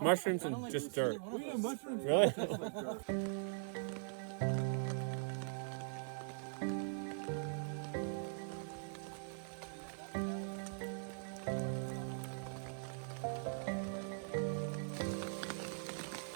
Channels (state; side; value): silent; left; digital silence